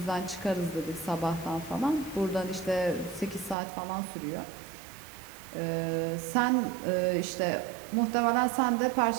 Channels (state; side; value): drops out; left; at 3.6 s